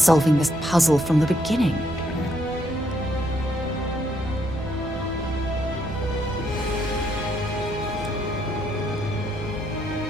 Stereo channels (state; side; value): normal; both; correlation 0.73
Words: this puzzle from the beginning.